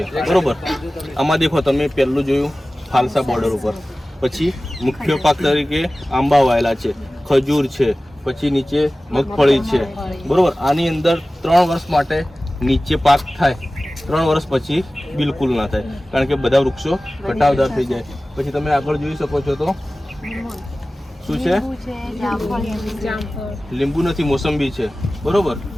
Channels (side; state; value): both; normal; correlation 0.97